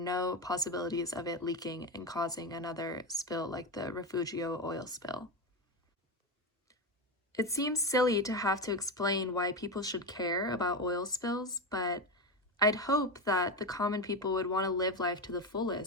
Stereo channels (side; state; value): both; normal; correlation 0.15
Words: possibilities of it leaking and causing another spill like the Refugio oil spill. It seems silly to have to explain why people should care about oil spills, but I'd hope that the common people would want to live life to the